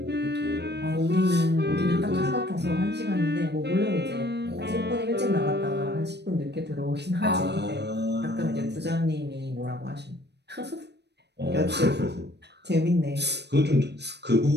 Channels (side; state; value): left; late; 0.49 ms